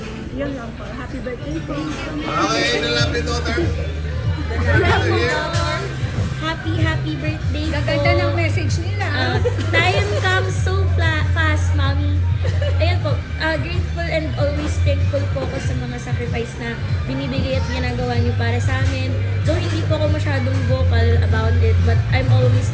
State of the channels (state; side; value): identical; both; correlation 1.00